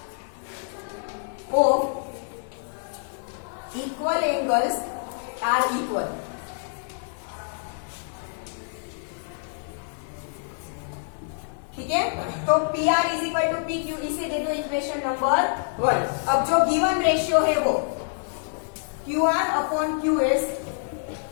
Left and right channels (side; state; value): right; silent; 61 dB below the other